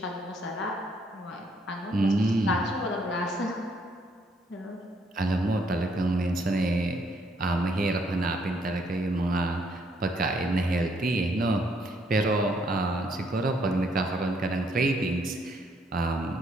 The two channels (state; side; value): normal; both; correlation 0.70